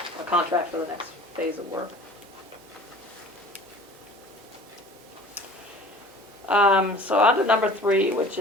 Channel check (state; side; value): normal; both; correlation 0.45